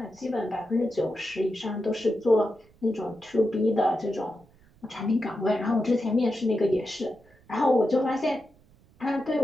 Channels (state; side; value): noise; right; rumble, 29 dB below the sound